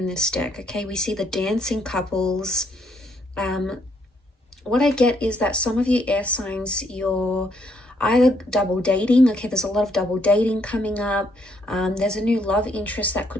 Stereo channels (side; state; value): both; normal; correlation 0.71